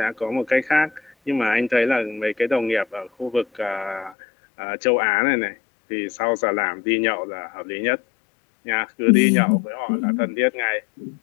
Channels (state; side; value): drops out; right; at 4.2 s